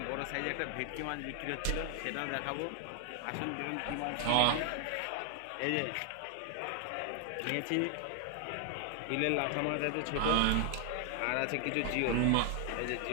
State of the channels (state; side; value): different; both; correlation 0.00